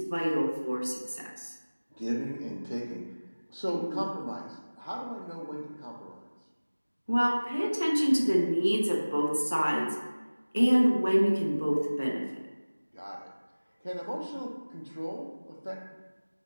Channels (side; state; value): both; inverted; correlation -1.00